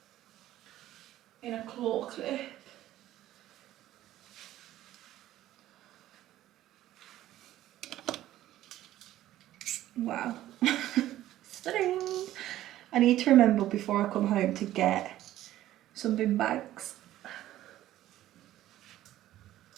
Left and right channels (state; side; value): quieter; left; 13.9 dB